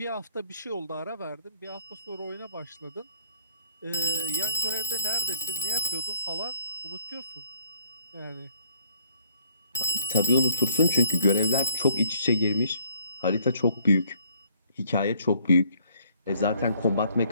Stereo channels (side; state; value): both; inverted; correlation -0.63